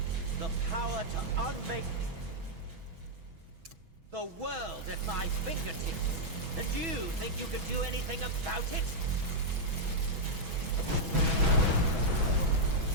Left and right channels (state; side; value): late; left; 6.2 ms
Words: The power to unmake the world at my fingertips. And you think you can do anything about it?